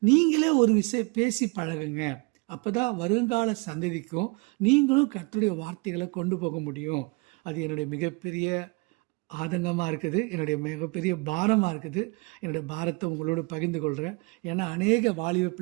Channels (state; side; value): quieter; left; 28.3 dB